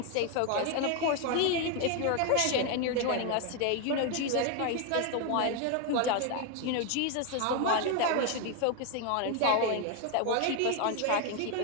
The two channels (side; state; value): both; different; correlation 0.01